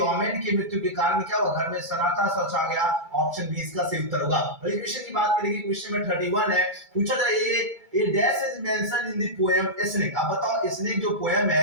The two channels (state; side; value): late; left; 2.3 ms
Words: ओमेन की मृत्यु के कारण क्या हुआ, घर में सन्नाटा सा छा गया, ऑप्शन बी इसका सही उत्तर होगा। अगले क्वेश्चन की बात करेंगे, क्वेश्चन में 31 है, पूछा जाए ये dash is mention in the poem snake. अब बताओ स्नेक जो पोएम